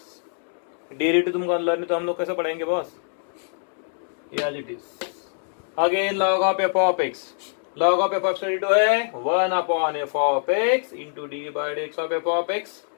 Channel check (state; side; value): silent; right; digital silence